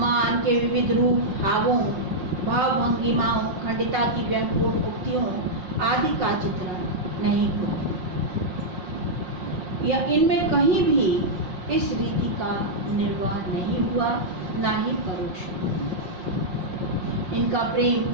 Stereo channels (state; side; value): late; left; 5.6 ms